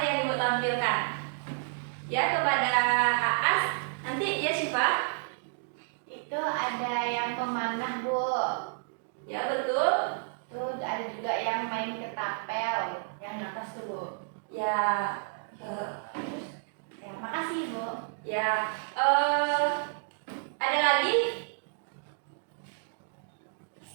yang Ibu tampilkan? Ya, kepada Aas. Nanti ya Syifa. Itu ada yang pemanah, Bu. Ya, betul. Terus ada juga yang main ketapel, yang atas tuh, Bu. Ya, Ya, makasih, Bu. ya. Ada lagi?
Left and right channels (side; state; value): left; silent; digital silence